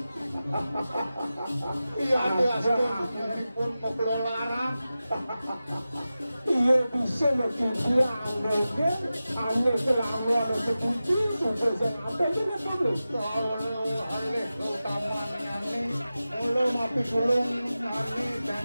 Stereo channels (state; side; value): inverted; both; correlation -0.94